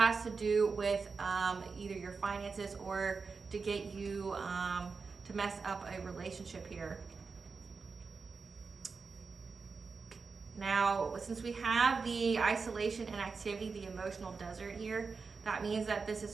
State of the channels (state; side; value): quieter; left; 4.8 dB